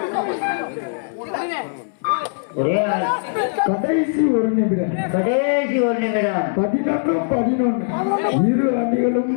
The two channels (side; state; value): right; silent; 65 dB below the other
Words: ஒரே ஆள். கடைசி ஒரு நிமிடம் கடைசி ஒரு நிமிடம் 11 இரு அணிகளும்